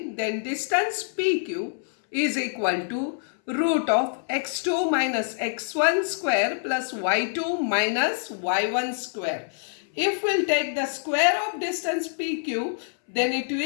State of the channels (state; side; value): silent; right; 61 dB below the other